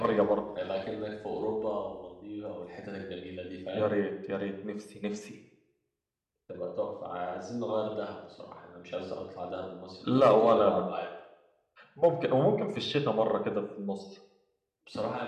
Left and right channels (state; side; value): identical; both; correlation 1.00